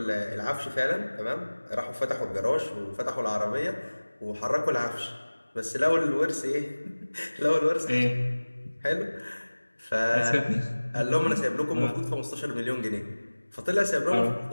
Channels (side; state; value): both; inverted; correlation -1.00